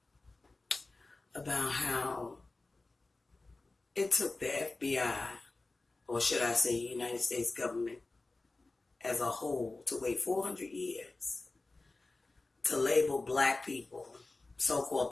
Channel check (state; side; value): quieter; right; 3.3 dB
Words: about how it took the FBI, or should I say United States government as a whole, to wait 400 years to label black people, so-called